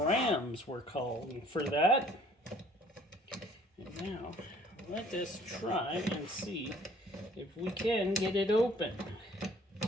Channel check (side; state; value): both; normal; correlation 0.56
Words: we're calling for that. And now, let us try and see if we can get it open.